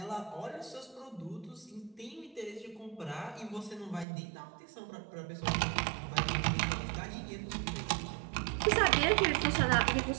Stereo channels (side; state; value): left; drops out; at 4.0 s